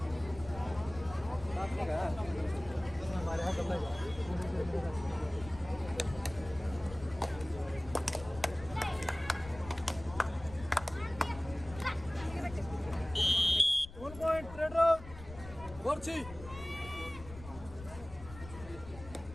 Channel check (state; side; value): noise; left; rumble, 15 dB below the sound